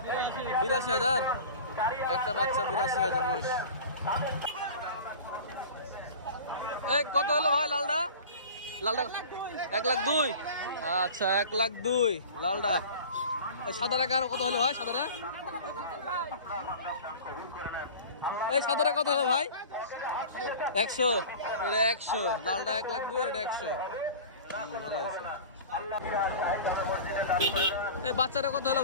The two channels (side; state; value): both; inverted; correlation -0.38